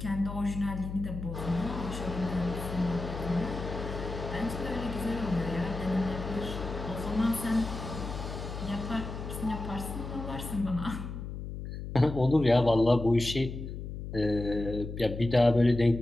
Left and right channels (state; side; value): noise; left; hum, 7 dB below the sound